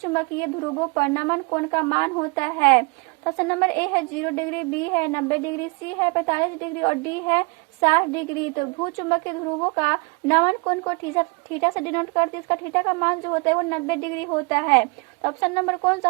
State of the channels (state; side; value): quieter; left; 30.6 dB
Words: ध्रुवों पर नमन कोण का मान होता है। तो ऑप्शन नंबर ए है 0 डिग्री, बी है 90 डिग्री, सी है 45 डिग्री और डी है 60 डिग्री। तो भूचुंबकीय ध्रुवों का नमन कोण को थीटा से डिनोट करते हैं, इसका थीटा का मान जो होता है वो 90 डिग्री होता है। तो ऑप्शन नंबर कौन सा